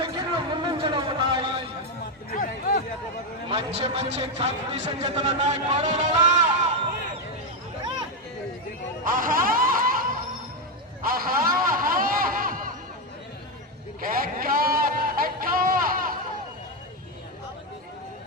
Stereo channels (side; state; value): both; normal; correlation 0.07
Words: ముందంజలో ఉన్నాయి. మంచి మంచి కాంపిటీషన్ జతలు ఉన్నాయి. పోరాడాలా